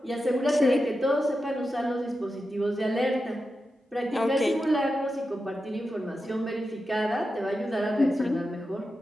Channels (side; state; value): both; normal; correlation 0.90